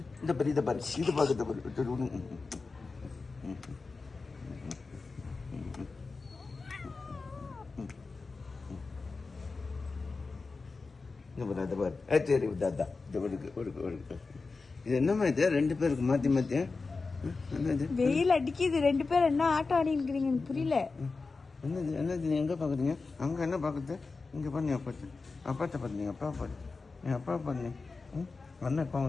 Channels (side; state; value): right; quieter; 4.1 dB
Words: இந்த பாரு இதை பாரு இது பார்க்க பாரு. இந்த பாரு அதை பாரு. சரி தாத்தா இது ஒருக்கு இது என்னம்மா இது ரெண்டு பேருக்கு மாற்றி மாற்றி என்னது வெயில் அடிக்குது, ரெண்டு பேரும் என்ன ஆட்டம் ஆடி இருக்கிறீங்க எனக்கு புரியல. என்னது என்னது நீ எங்கே பார்க்குறீங்க? அங்கே என்ன பார்க்குறது? இங்கே பண்ணி அப்பாத்து அப்பாத்த பார்த்து அப்பா பாரு என் அப்பா பண்ணி அண்ணன் இப்போ